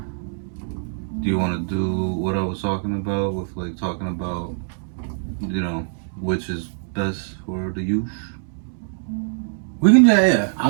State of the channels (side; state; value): left; silent; digital silence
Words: Do you want to do what I was talking about with like talking about, which is best for the youth? We can yeah.